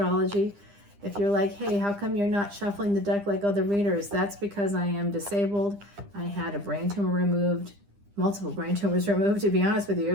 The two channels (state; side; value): late; left; 9.9 ms